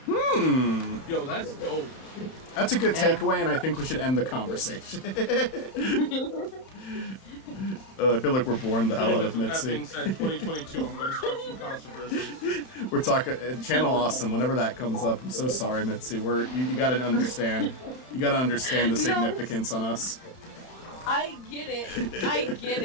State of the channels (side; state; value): right; late; 31 ms